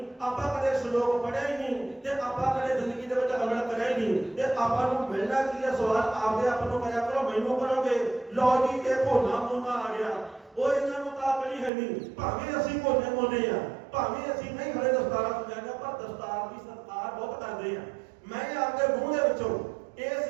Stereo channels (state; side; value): drops out; left; at 11.7 s